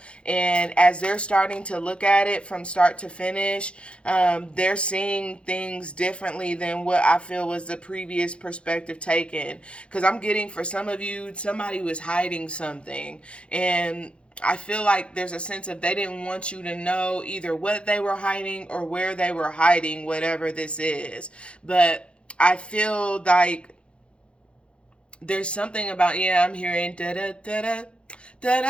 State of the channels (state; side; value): late; right; 0.058 ms